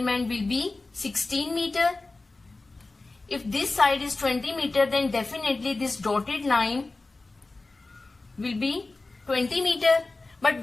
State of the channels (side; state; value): right; quieter; 3.4 dB